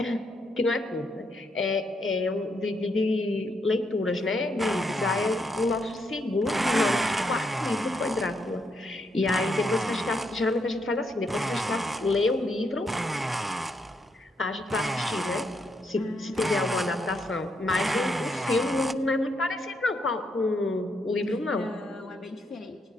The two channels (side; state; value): both; normal; correlation 0.77